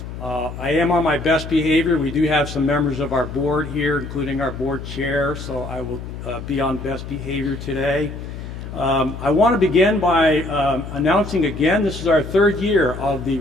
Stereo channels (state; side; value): noise; left; hum, 10 dB below the sound